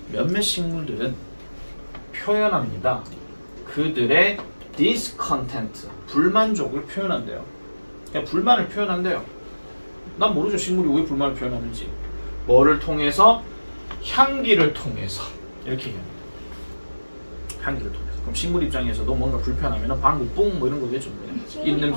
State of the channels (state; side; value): inverted; both; correlation -1.00